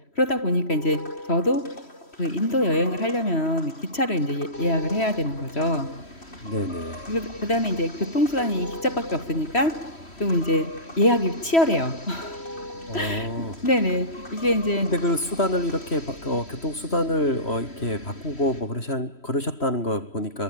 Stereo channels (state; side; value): late; right; 3.1 ms